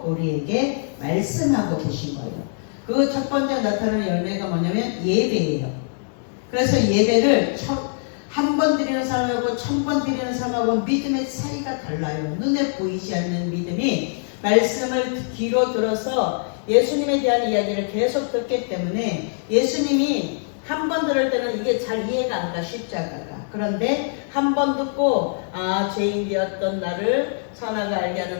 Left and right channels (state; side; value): silent; right; digital silence